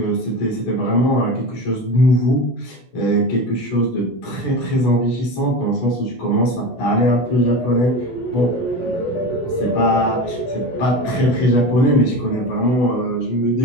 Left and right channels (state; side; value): late; right; 16 ms